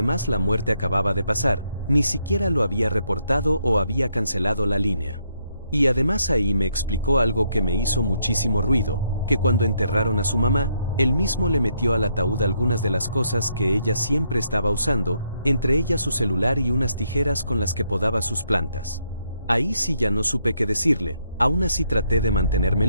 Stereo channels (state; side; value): inverted; both; correlation -0.76